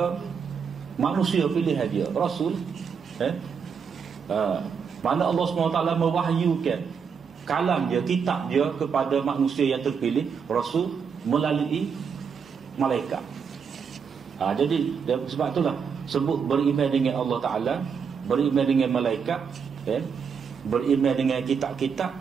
manusia pilihan dia, Rasul. Mana Allah SWT mewahyukan kalam dia, kitab dia kepada manusia yang terpilih, Rasul, melalui malaikat. Jadi sebab itulah sebut beriman dengan Allah Ta'ala, beriman dengan malaikat, beriman dengan kitab-kitab,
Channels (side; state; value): left; quieter; 6.4 dB